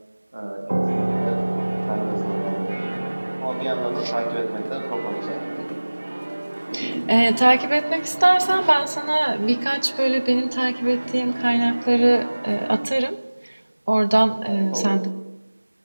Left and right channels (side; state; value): both; inverted; correlation -1.00